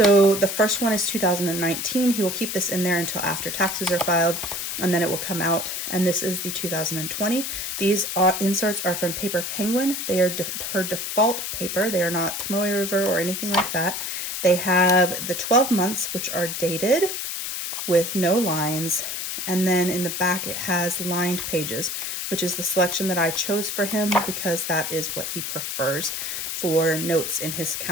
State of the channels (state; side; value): noise; left; hiss, 4 dB below the sound